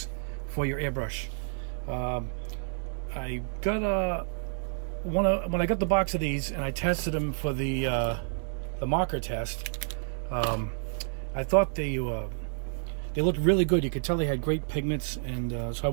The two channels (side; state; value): left; silent; digital silence